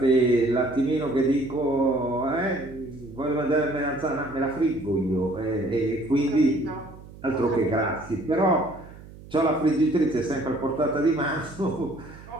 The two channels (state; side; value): noise; right; hum, 18 dB below the sound